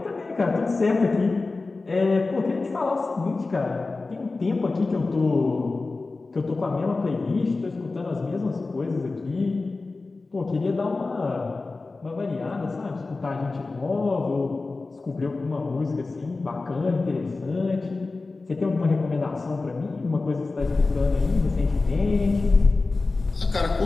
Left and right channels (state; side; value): quieter; right; 3.6 dB